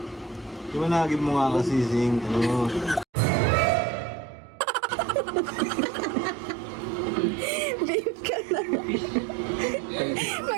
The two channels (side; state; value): left; drops out; at 3.1 s